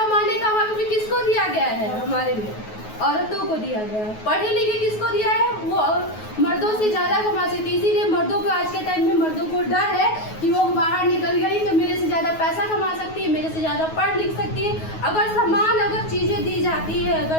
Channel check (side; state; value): right; late; 9.4 ms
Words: का हक भी किसको दिया गया है? हमारे में औरतों को दिया गया है। पढ़े लिखे किसको दिया है? वो मर्दों से ज्यादा कमा सकती है। इसीलिए मर्दों को आज के टाइम में मर्दों को डर है कि वो बाहर निकल गई तो मेरे से ज्यादा पैसा कमा सकती है, मेरे से ज्यादा पढ़ लिख सकती है। अगर चीजें दी जाती है,